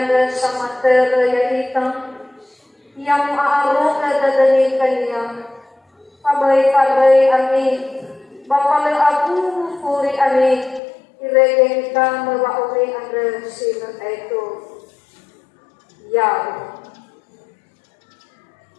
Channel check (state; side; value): drops out; right; at 10.8 s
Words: sama terayaitan, yang aarok dadani kanya, pabay-pabay ani, bapala aku puri ani, iregeng ka mawauli anda sila ito, ya.